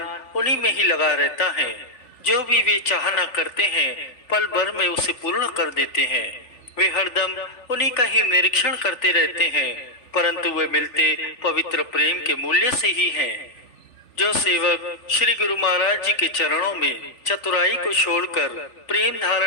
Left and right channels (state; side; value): late; right; 3.4 ms